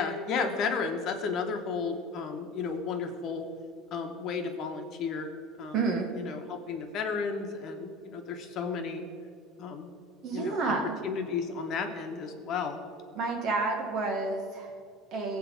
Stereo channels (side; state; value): both; normal; correlation 0.36